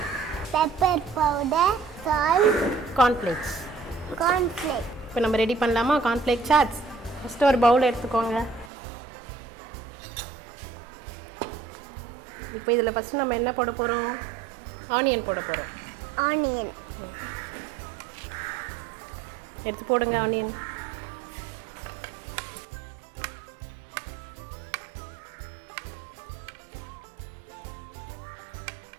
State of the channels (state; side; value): drops out; left; at 8.7 s